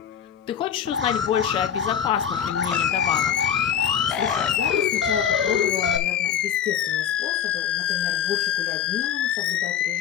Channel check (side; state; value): right; quieter; 8.7 dB